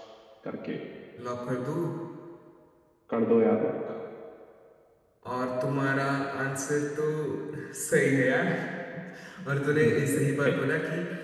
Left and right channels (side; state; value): both; identical; correlation 1.00